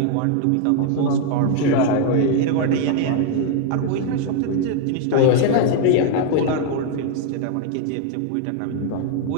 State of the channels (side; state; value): both; different; correlation 0.00